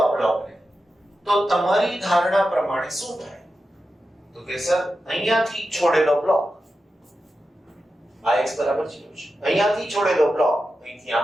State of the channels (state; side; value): normal; both; correlation 0.91